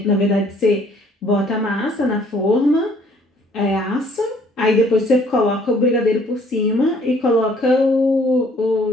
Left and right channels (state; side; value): normal; both; correlation 0.60